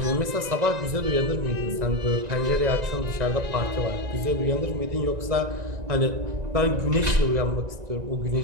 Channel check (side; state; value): left; late; 1.9 ms